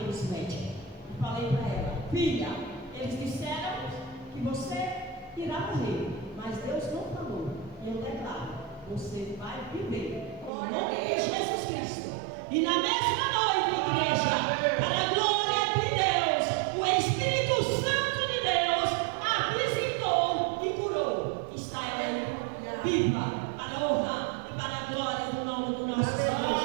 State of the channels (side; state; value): left; drops out; at 10.5 s